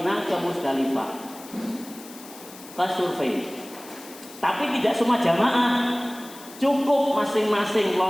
ke Musdalifah, ke survei. Tapi tidak semua jamaah, cukup masing-masing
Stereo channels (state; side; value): noise; left; hiss, 18 dB below the sound